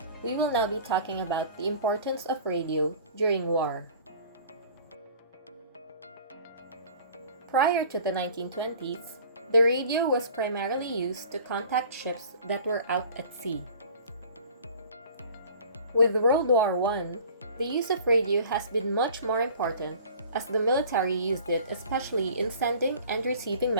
we will now be talking about the importance of radio during war. Prior to the 1920s, the radio was primarily used to contact ships that were out at sea. With World War I, the use of radio has been much more important as the military used it especially in sending and receiving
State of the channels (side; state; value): both; inverted; correlation -0.46